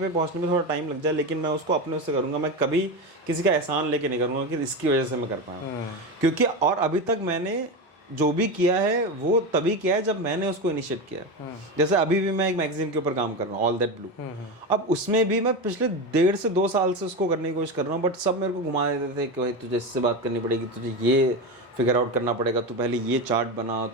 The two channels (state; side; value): normal; both; correlation 0.19